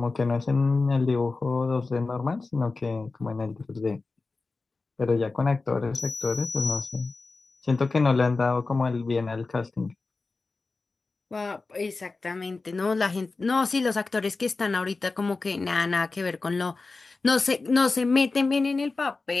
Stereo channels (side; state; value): right; quieter; 3.8 dB